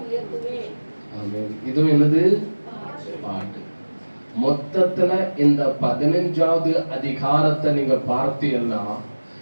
உயர்த்துவேன். ஆமென். இதுவும் என்னது? பாட்டு. மொத்தத்துல இந்த 15வது அதிகாரத்தை நீங்க பார்த்தீங்கன்னா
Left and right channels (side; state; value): both; inverted; correlation -1.00